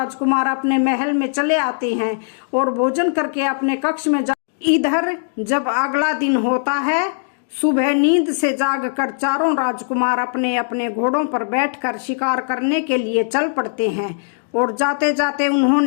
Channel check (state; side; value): silent; right; digital silence